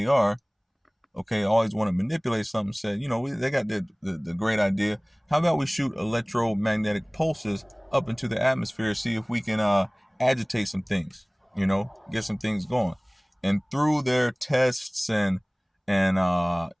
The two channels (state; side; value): identical; both; correlation 1.00